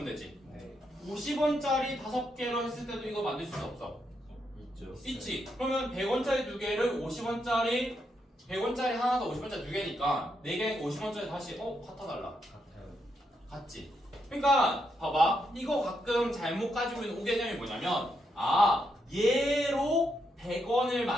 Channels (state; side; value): normal; both; correlation 0.80